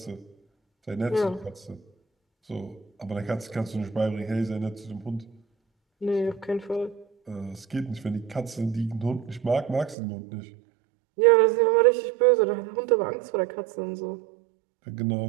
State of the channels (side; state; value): left; drops out; at 10.0 s